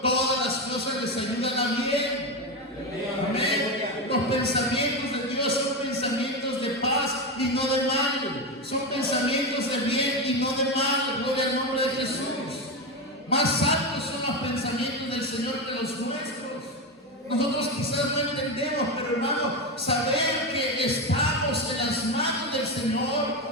todas las cosas les ayudan a bien. Amén. Los pensamientos de Dios son pensamientos de paz y no de mal. Son pensamientos de bien y no de mal. Gloria al nombre de Jesús. Más altos son los pensamientos del Señor que los nuestros. Nosotros quizás no entendemos, pero hermano, saber que estamos en las manos del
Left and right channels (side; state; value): both; normal; correlation 0.14